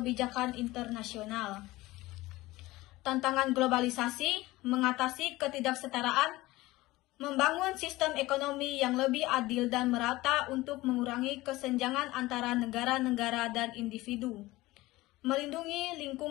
internasional. Tantangan globalisasi, mengatasi ketidaksetaraan, membangun sistem ekonomi yang lebih adil dan merata untuk mengurangi kesenjangan antara negara-negara dan individu, melindungi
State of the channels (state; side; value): quieter; right; 19.0 dB